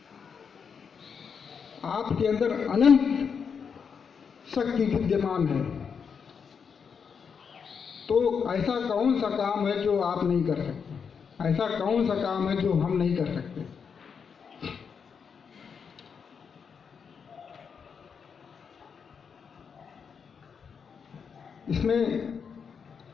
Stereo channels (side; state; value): right; quieter; 6.4 dB